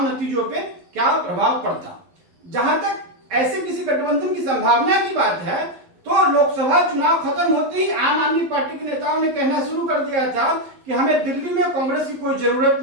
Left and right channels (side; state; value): left; late; 11 ms